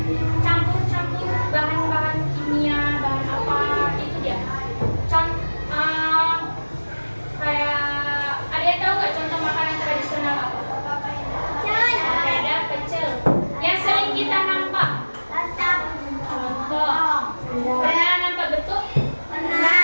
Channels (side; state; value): both; inverted; correlation -1.00